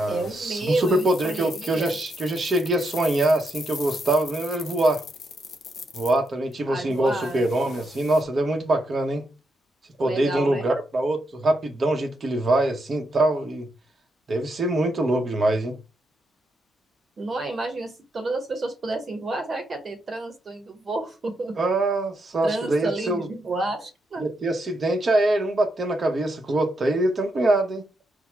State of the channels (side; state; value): both; normal; correlation 0.81